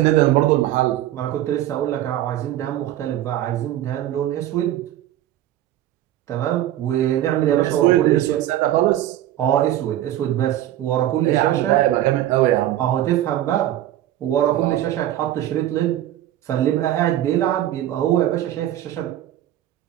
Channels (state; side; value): quieter; left; 13.0 dB